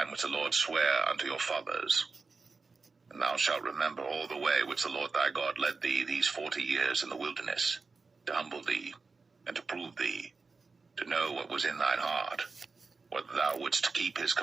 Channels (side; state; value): left; quieter; 4.3 dB